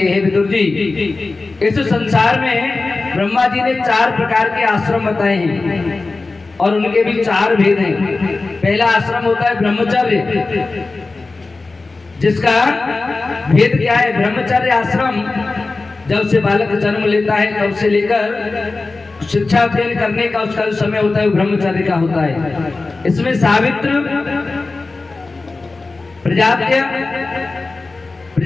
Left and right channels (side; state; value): right; quieter; 3.6 dB